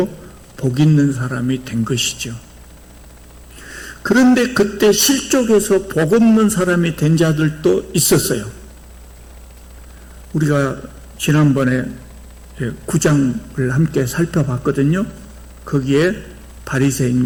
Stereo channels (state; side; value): identical; both; correlation 1.00